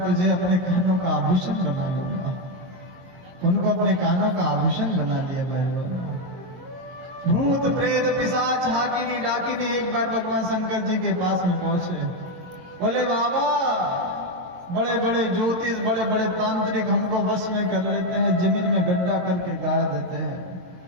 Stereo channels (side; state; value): left; late; 22 ms